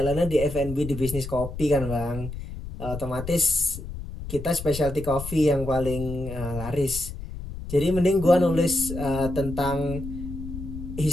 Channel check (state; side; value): noise; left; rumble, 9 dB below the sound